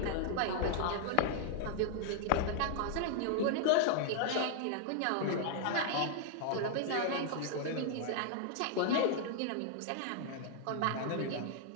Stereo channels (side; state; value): both; different; correlation -0.01